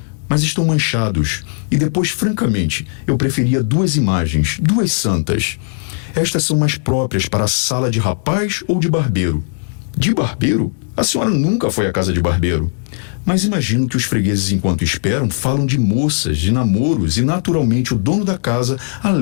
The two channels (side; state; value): right; silent; digital silence